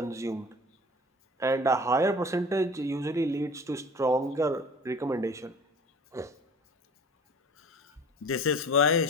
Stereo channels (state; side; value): normal; both; correlation 0.42